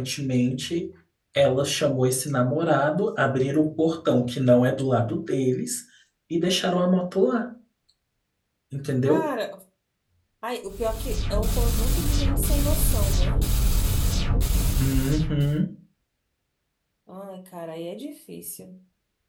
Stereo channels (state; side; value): identical; both; correlation 1.00